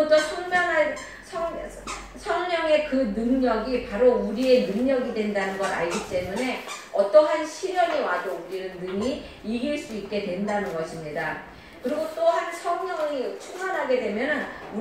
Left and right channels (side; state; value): both; identical; correlation 1.00